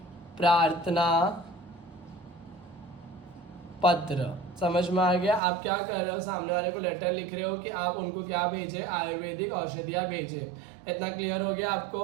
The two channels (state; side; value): drops out; left; at 5.4 s